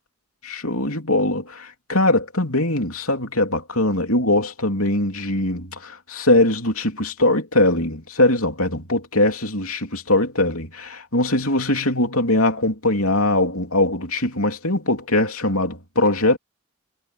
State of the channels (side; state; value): both; normal; correlation -0.15